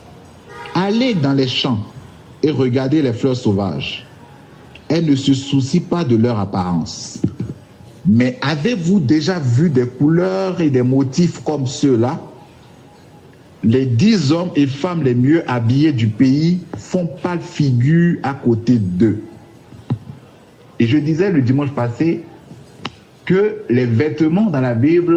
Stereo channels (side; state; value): both; identical; correlation 1.00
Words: Allez dans les champs et regardez les fleurs sauvages. Elles ne se soucient pas de leur apparence. Mais avez-vous déjà vu des couleurs et des motifs comme ceux-là? Les 10 hommes et femmes les mieux habillés du pays font pâle figure à côté d'eux. Et je disais le dimanche passé que les vêtements dans la